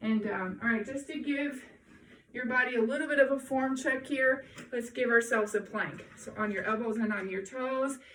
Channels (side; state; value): both; identical; correlation 1.00